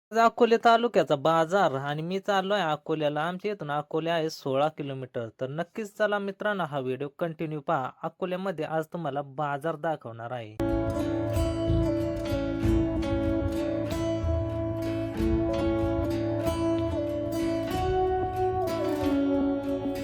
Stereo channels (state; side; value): identical; both; correlation 1.00